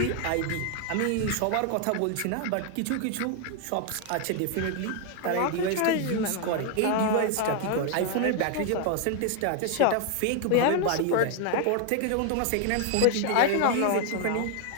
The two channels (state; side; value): different; both; correlation 0.00